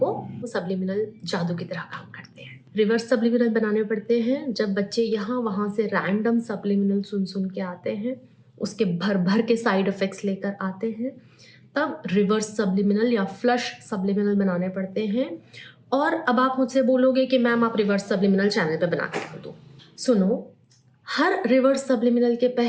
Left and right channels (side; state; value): both; identical; correlation 1.00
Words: वो सब्लिमिनल जादू की तरह काम करते हैं। रिवर्स सब्लिमिनल बनाने पड़ते हैं जब बच्चे यहाँ वहाँ से रैंडम सब्लिमिनल सुन के आते हैं, उसके भर भर के साइड इफ़ेक्ट्स लेकर आते हैं, तब रिवर्स सब्लिमिनल या फ्लश सब्लिमिनल बनाने पड़ते हैं। और अब आप मुझसे बोलोगे कि मैम आप रिवर्स सब्लिमिनल चैनल पे बना के कर दो। सुनो, हर रिवर्स सब्लिमिनल के